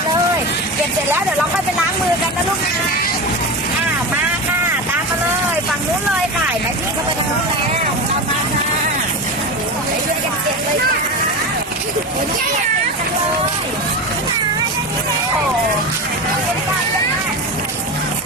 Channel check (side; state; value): both; normal; correlation 0.23